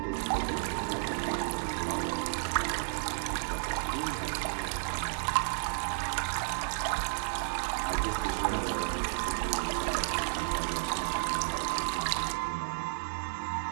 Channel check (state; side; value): silent; left; digital silence